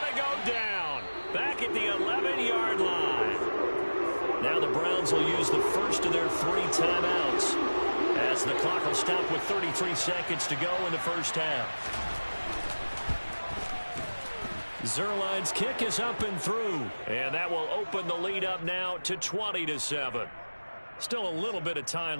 to go down. Back at the 11-yard line. Now the Browns will use the first of their 3 timeouts as the clock will stop with 33 seconds to go in the first half. Zerline's kick is up and through, and that will open the lead up now to 20-7. Still a little bit of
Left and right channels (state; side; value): inverted; both; correlation -1.00